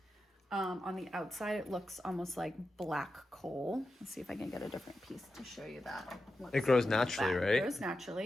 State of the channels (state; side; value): normal; both; correlation 0.90